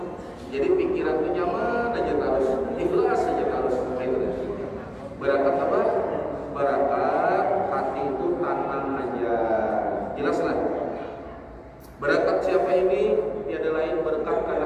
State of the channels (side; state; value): both; identical; correlation 1.00